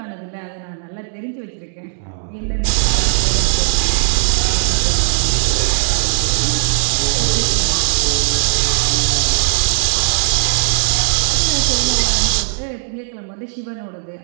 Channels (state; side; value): silent; left; digital silence